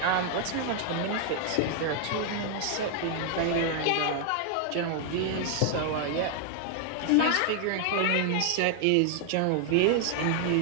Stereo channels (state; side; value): different; both; correlation 0.00